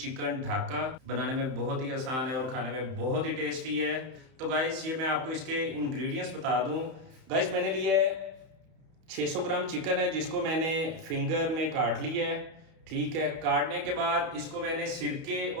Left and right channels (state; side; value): late; left; 31 ms